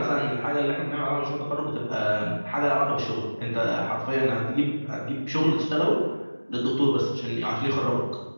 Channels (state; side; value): inverted; both; correlation -1.00